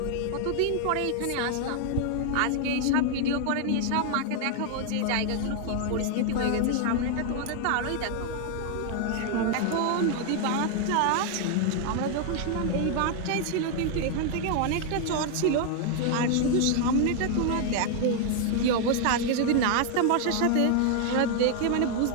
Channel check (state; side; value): different; both; correlation 0.00